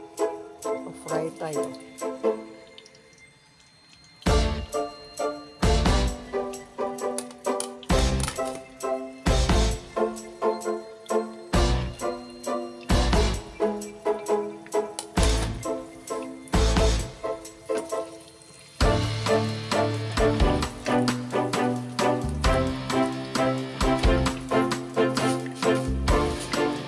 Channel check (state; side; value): identical; both; correlation 1.00